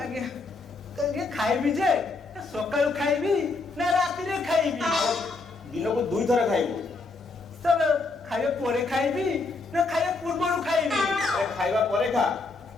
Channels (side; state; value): right; quieter; 3.7 dB